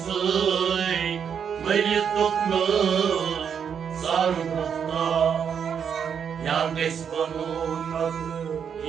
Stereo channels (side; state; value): left; quieter; 7.5 dB